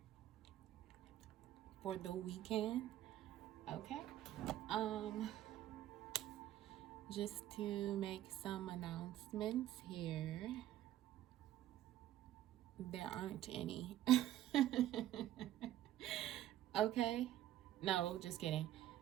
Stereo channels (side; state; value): left; quieter; 13.0 dB